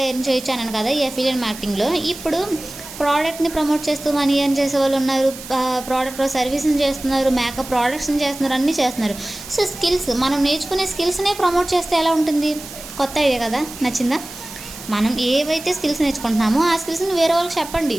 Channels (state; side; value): noise; right; hiss, 14 dB below the sound